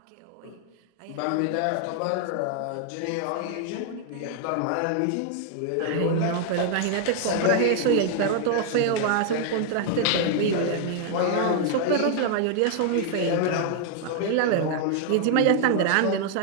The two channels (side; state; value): both; different; correlation 0.00